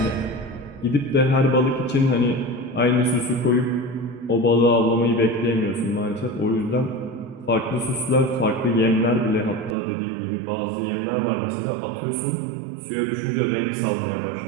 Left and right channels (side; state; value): left; drops out; at 9.8 s